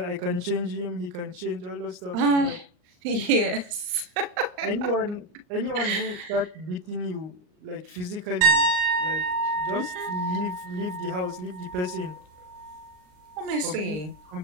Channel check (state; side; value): late; left; 39 ms